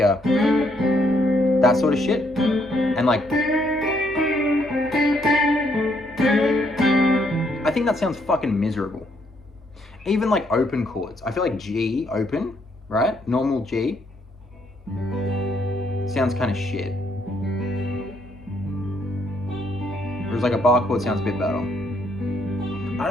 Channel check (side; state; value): both; normal; correlation 0.72